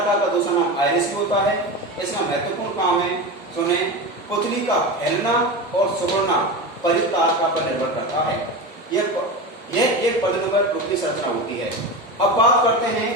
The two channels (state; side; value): normal; both; correlation 0.24